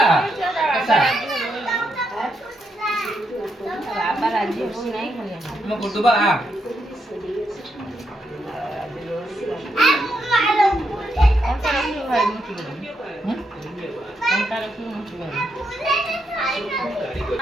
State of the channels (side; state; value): both; normal; correlation 0.80